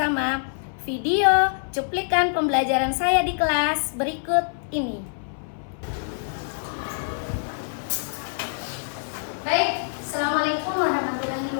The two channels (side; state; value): right; silent; 59 dB below the other